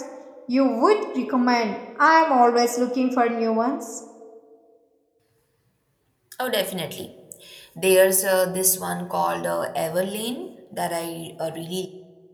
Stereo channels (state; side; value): identical; both; correlation 1.00